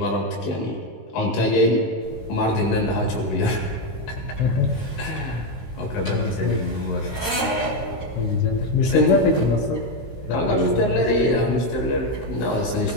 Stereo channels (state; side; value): late; right; 16 ms